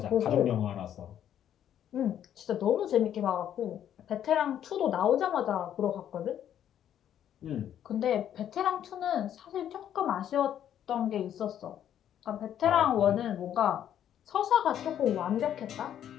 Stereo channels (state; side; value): quieter; right; 10.3 dB